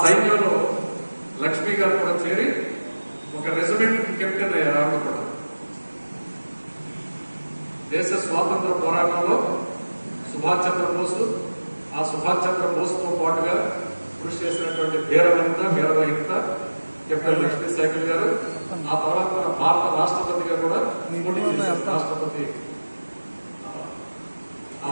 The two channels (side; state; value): both; inverted; correlation -1.00